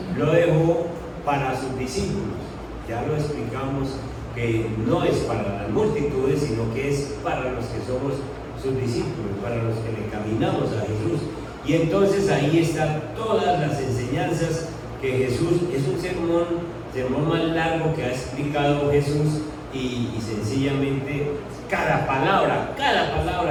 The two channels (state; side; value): identical; both; correlation 1.00